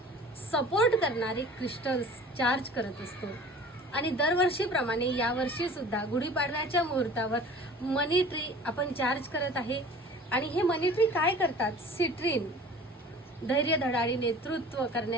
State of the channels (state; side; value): normal; both; correlation 0.44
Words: सपोर्ट करणारे क्रिस्टल्स चार्ज करत असतो. आणि दरवर्षीप्रमाणे यावर्षी सुद्धा गुढीपाडव्याच्या मुहूर्तावर मनी ट्री आपण चार्ज करत आहे. आणि हे मनी ट्री काय करतात? सिट्रीन, धैर्य धडाडी नेतृत्व